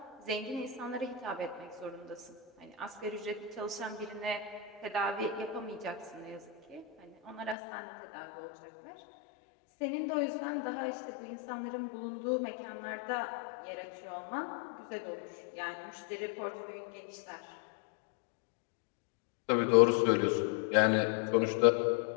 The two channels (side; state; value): right; drops out; at 7.6 s